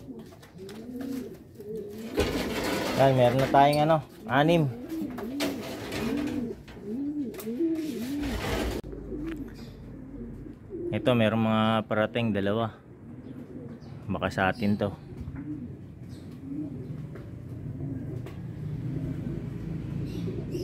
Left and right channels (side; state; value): both; identical; correlation 1.00